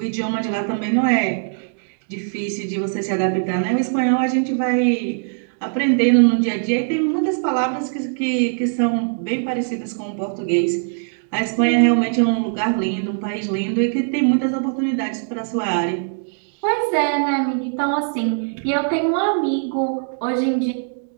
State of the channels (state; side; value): silent; left; digital silence